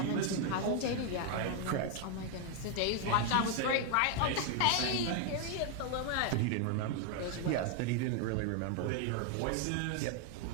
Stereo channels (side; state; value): both; different; correlation 0.00